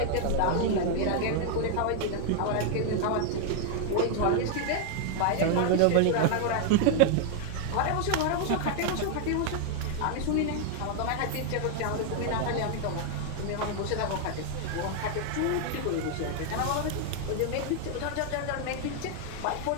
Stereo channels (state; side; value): different; both; correlation 0.00